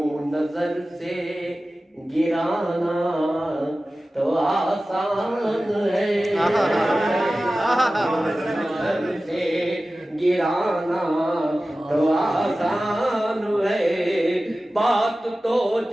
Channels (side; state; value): both; normal; correlation 0.96